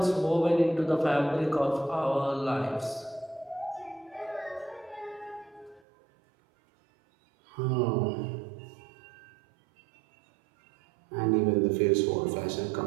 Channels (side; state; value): left; drops out; at 5.8 s